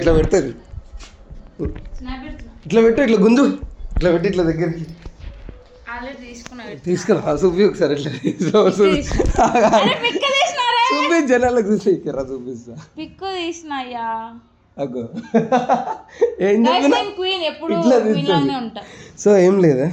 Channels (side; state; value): both; identical; correlation 1.00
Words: పెడుతుంది. స్నాప్ పెడుతున్నా. ఇట్లా పెట్టు, ఇట్లా గుంజు, ఇట్లా పెట్టి ఇట్లా దగ్గరికి ఆల్రెడీ తీసుకున్నా. తీసుకురా చూపి ఒకసారి ఇట్లా చూపి జనాలకు చూసి చూపిస్తా. పిక్కు తీసినాయ్యా. అగో ఏం చెప్పినా క్వీన్ ఎప్పుడు ఇట్లా క్వీన్ లానే ఉంటా. సో ఏం లేదా,